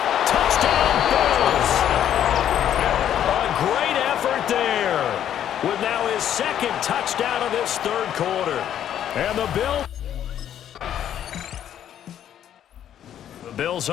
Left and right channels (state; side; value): quieter; right; 10.3 dB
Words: Touchdown Bills! A great effort there with now his 2nd touchdown of this 3rd quarter. And the Bills